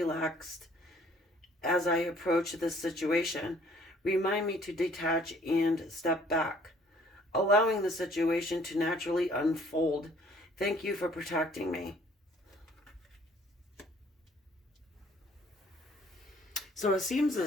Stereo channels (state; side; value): normal; both; correlation 0.59